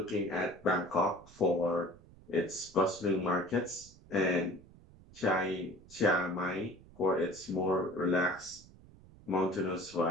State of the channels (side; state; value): right; noise; rumble, 23 dB below the sound